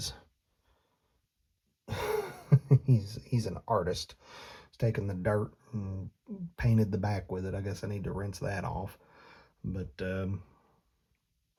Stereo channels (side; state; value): both; identical; correlation 1.00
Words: he's an artist. He's taken the dirt and painted the back with it. I guess I need to rinse that off. But